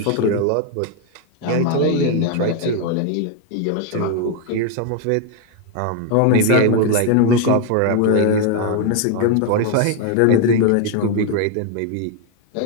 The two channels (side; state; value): both; different; correlation 0.01